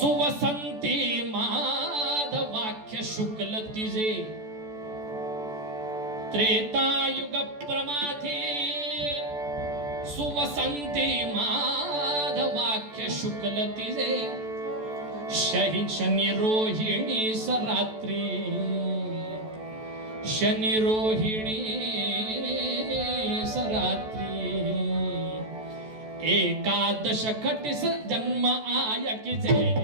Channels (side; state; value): left; late; 14 ms